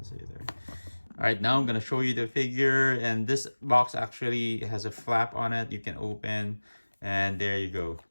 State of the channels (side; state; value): both; inverted; correlation -1.00